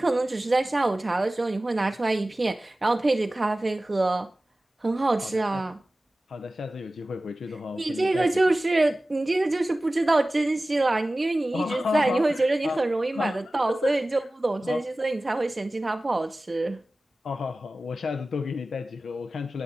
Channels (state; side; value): normal; both; correlation 0.96